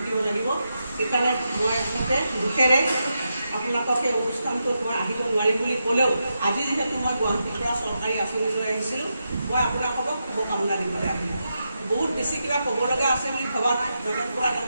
লাগিব। সেইকাৰণে মই আচলতে দুখেৰে আপোনালোকক এই অনুষ্ঠানটোত মই আহিব নোৱাৰিম বুলি ক'লেও আজি যিহেতু মই গুৱাহাটীৰ পৰা চৰকাৰী আঁচনি লৈ আহিছিলোঁ, মই আপোনালোকক শুভকামনা দিবলৈ আহিলোঁ। বহুত বেছি কিবা ক'ব লগা আছে বুলি ভবা নাই। নগেন বৰা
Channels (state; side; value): inverted; both; correlation -0.86